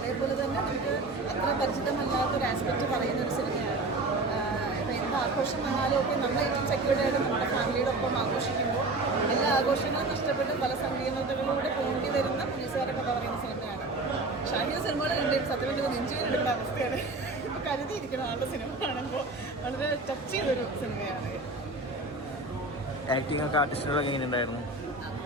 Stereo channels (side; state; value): left; quieter; 3.1 dB